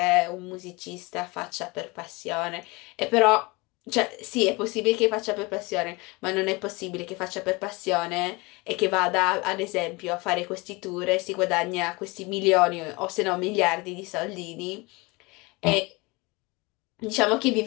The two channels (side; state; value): right; quieter; 25.1 dB